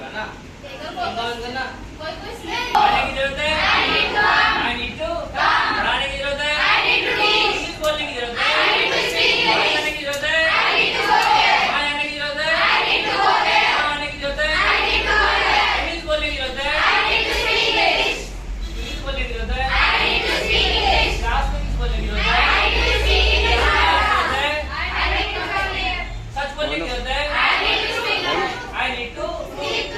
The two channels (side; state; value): both; identical; correlation 1.00